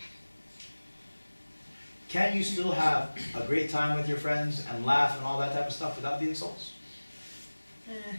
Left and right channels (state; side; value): inverted; both; correlation -1.00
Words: Can you still have a great time with your friends and laugh and all that type of stuff without the insults?